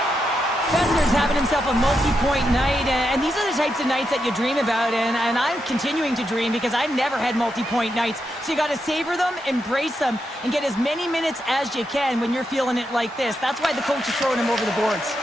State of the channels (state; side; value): normal; both; correlation 0.84